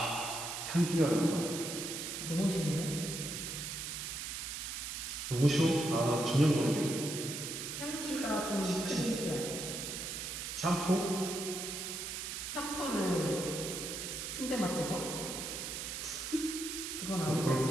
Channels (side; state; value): right; noise; hiss, 5 dB below the sound